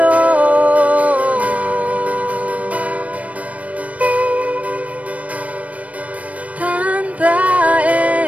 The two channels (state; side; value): late; left; 0.067 ms